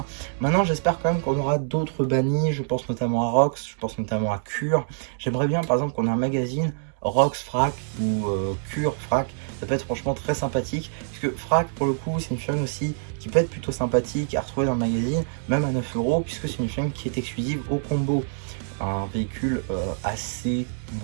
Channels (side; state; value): left; silent; digital silence